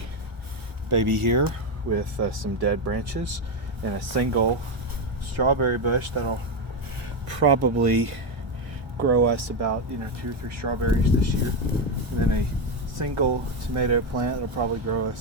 baby here with some dead branches and a single strawberry bush that'll probably grow us about 2 or 3 strawberries this year, and then a single tomato plant that'll probably grow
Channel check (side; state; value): left; late; 1.4 ms